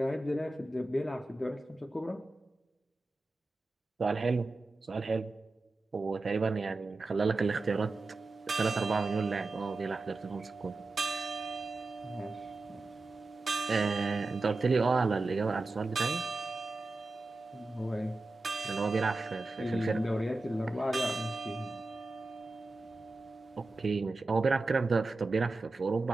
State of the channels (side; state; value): left; quieter; 3.2 dB